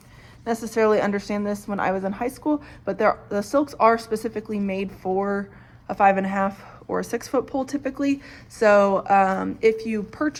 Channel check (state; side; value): identical; both; correlation 1.00